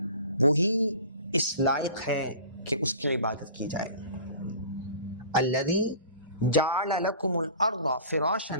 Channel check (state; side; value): inverted; both; correlation -0.42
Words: وہی اس لائق ہے کہ اس کی عبادت کی جائے۔ الذی جعل لکم الارض فراشا،